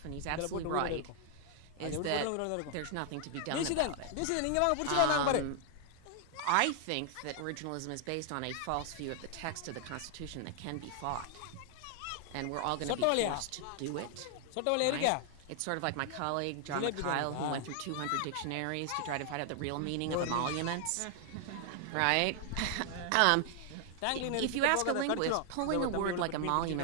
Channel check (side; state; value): both; different; correlation 0.00